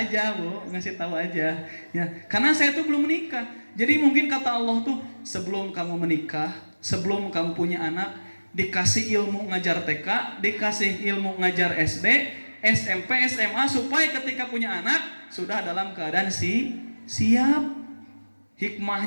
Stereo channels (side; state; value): both; inverted; correlation -1.00